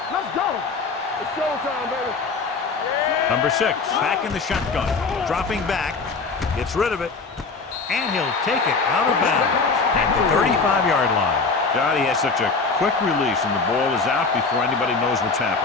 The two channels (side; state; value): right; quieter; 4.4 dB